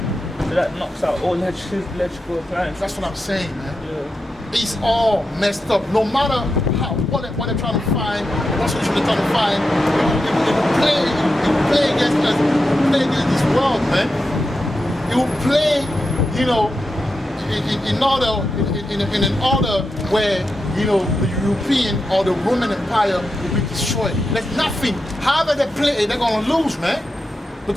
So that knocks out all electrical appliances. That's what I'm saying, man. Yeah. It's all messed up. No matter what they're trying to find, what solution they're trying to find, it will play against us. It will play against this world, man. It will play, you know, in an order where, you know, the European or the Roman Empire will be destroyed. There's nothing. However they play, they're gonna lose, man.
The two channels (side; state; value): both; normal; correlation 0.88